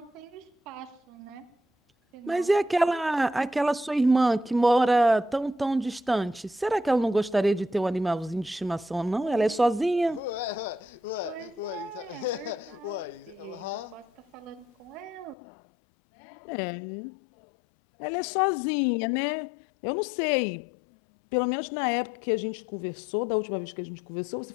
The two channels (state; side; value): drops out; right; at 15.4 s